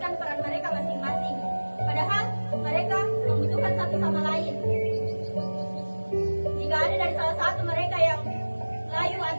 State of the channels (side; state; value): both; inverted; correlation -1.00